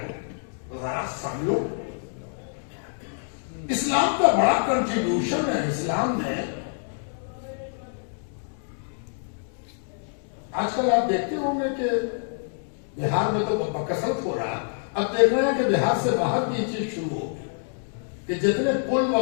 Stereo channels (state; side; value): silent; right; digital silence